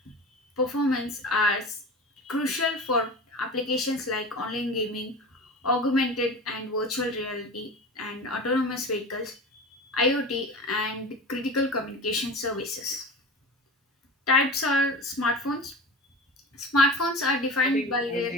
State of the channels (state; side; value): normal; both; correlation 0.32